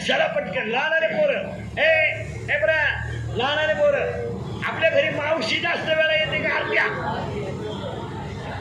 चला पटकन. लहानारे पोरं ए बरा, लहानारे पोरं आपल्या घरी मावशी जास्त वेळा येते का? अर्ध्या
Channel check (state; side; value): identical; both; correlation 1.00